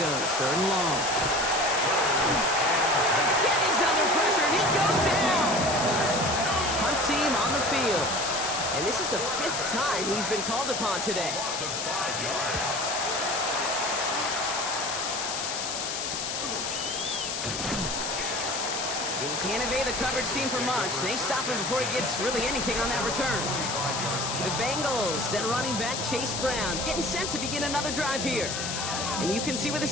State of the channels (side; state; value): left; noise; hiss, 3 dB below the sound